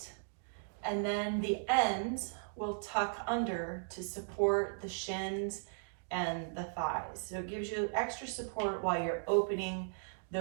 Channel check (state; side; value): silent; left; digital silence